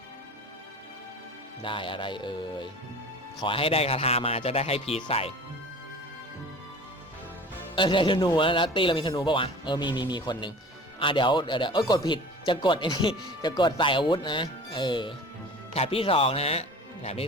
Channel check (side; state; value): both; normal; correlation 0.41